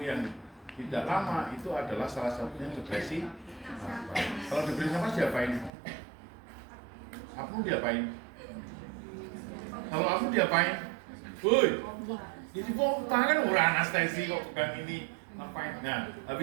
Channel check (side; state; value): left; drops out; at 5.7 s